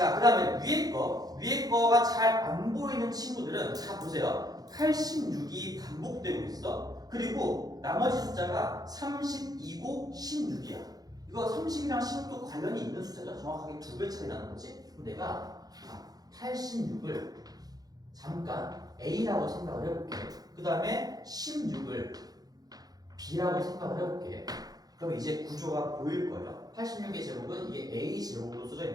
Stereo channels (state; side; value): late; left; 0.19 ms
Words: 그 다음에 위에 거가 잘 안 보이는 친구들은 자 보세요. 86이 반복되고 있어. 그리고 나머지 숫자가 32고 16이야. 이거 30이랑 16도 관련이 있는 숫자죠. 정확하게 2배 차이 나는 거지. 그럼 내가 86을 잠깐 A라고 생각을 해볼게. 그 다음에 16을 B라고 생각을 해볼게. 그럼 이제 구조가 보일 거예요. 86의 제곱은 이게 A 제곱으로 써져